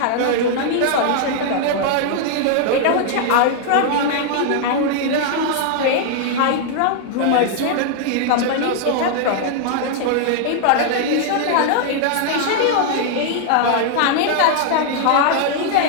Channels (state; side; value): different; both; correlation -0.01